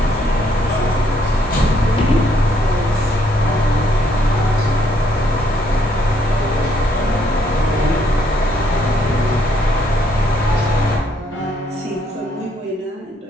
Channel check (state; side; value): normal; both; correlation 0.70